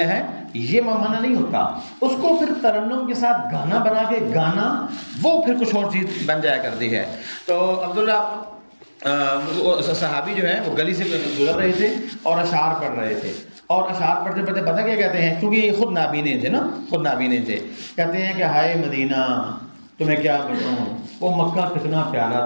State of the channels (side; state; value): both; inverted; correlation -1.00